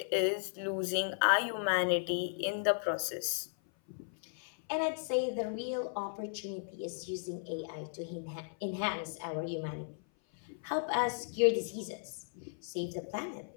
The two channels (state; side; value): silent; right; 54 dB below the other